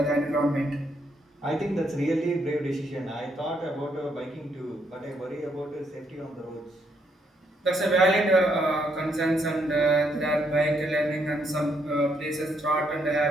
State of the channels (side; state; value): both; normal; correlation 0.74